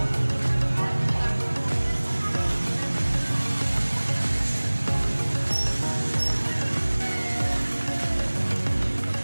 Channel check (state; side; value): inverted; both; correlation -1.00